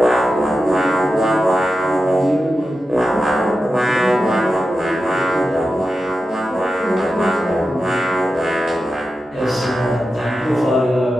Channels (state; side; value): normal; both; correlation 0.91